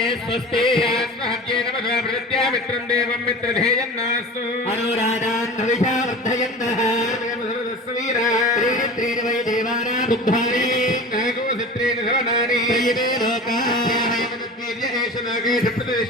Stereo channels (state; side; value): normal; both; correlation 0.35